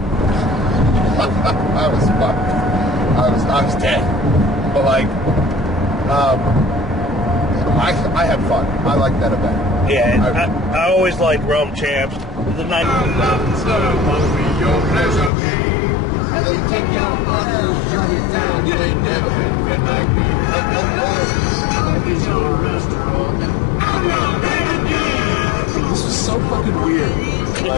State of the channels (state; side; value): drops out; right; at 15.3 s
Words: I was fucked. I was dead. But like, I had fun. I liked that event. Yeah, I always liked Realm Champs. The night. This was so fucking weird.